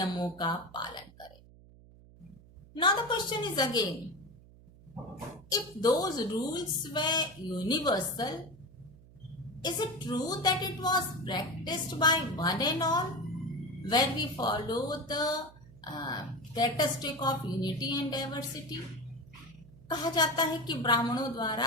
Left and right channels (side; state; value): right; noise; hum, 23 dB below the sound